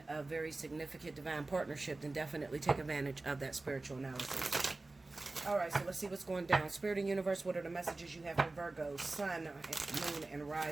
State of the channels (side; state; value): left; quieter; 3.2 dB